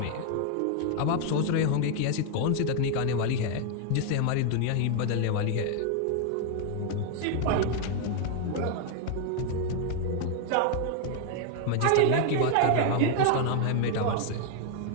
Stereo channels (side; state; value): both; different; correlation 0.00